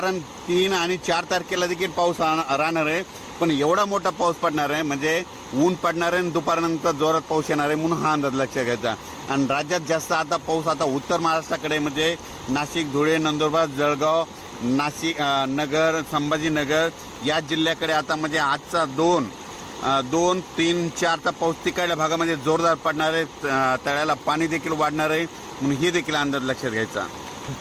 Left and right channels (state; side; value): identical; both; correlation 1.00